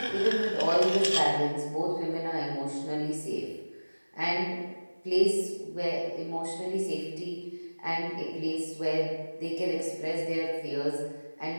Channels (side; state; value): both; inverted; correlation -1.00